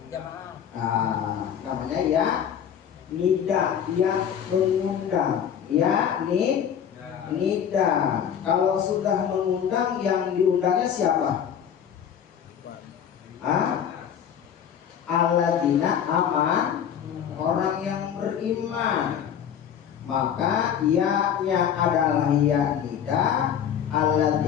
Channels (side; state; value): right; quieter; 8.7 dB